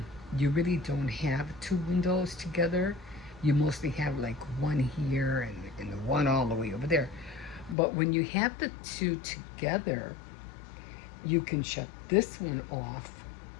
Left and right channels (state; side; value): drops out; right; at 7.8 s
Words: you really don't have two windows together. You mostly have like one here and the one all the way over there. But when you have the two together, you can shut this one off,